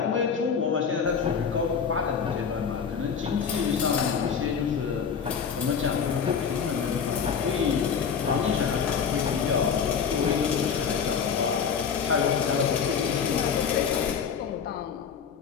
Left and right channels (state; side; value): quieter; right; 6.7 dB